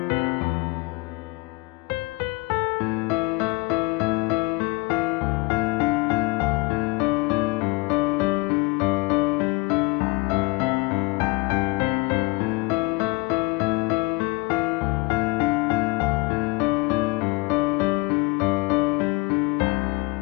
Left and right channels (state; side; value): quieter; right; 23.9 dB